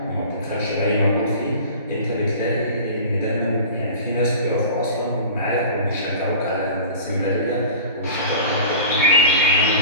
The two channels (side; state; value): both; inverted; correlation -0.39